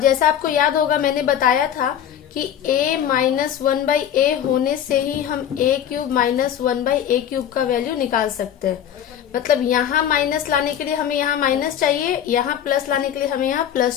आपको याद होगा मैंने बताया था कि a माइनस 1 बाई a होने से ही हम a cube minus 1 by a cube का वैल्यू निकाल सकते हैं। मतलब यहाँ माइनस लाने के लिए हमें यहाँ माइनस चाहिए, यहाँ प्लस लाने के लिए हमें यहाँ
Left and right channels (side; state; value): right; quieter; 9.8 dB